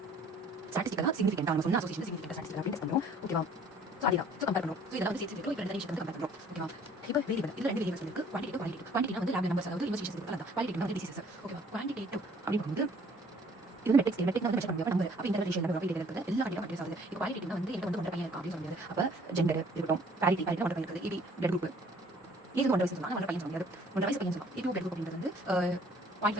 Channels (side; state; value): both; normal; correlation 0.56